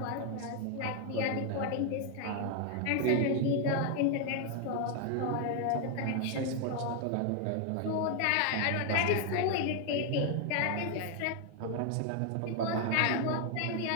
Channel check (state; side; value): different; both; correlation 0.00